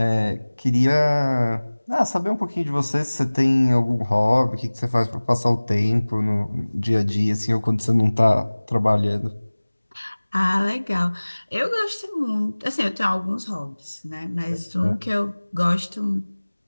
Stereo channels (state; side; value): inverted; both; correlation -1.00